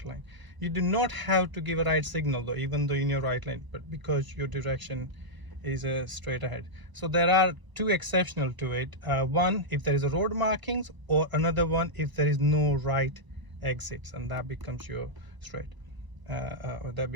lane. You do not have to give a right signal though, even though in your right lane, but because your direction is straight ahead. So there are two exceptional to it. One, if there is a road markings, or another one if there is no right exits, and that becomes your straight, or that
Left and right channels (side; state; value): left; late; 1.0 ms